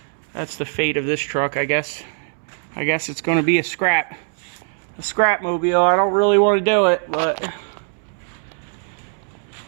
that's the fate of this truck, I guess. I guess it's going to be a scrap mobile. I don't really want to do it, but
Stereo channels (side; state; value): left; silent; 65 dB below the other